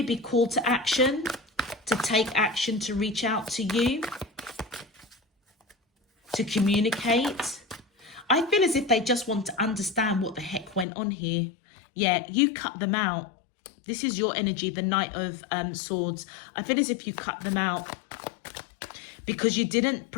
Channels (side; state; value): right; drops out; at 10.9 s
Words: be called to action, to take action, to reach out to you, to communicate. I feel as if they just want to understand what the heck went on here. Yeah, you cut them out. This is your energy, the Knight of Swords. I feel as if you cut them out because you didn't